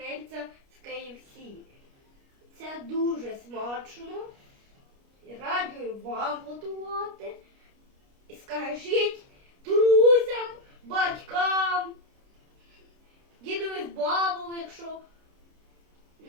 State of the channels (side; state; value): left; late; 29 ms